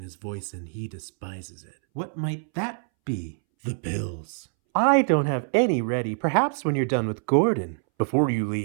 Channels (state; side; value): silent; left; 61 dB below the other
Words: his voice and he despises it. What might that be? The pills. I don't have any ready. Perhaps when you're done with Gordon. Before you